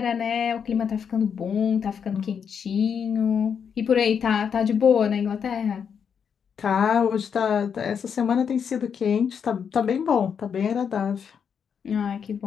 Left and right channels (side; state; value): right; quieter; 7.1 dB